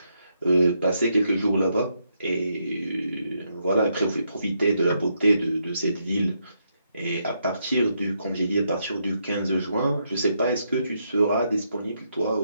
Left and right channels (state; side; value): inverted; both; correlation -0.79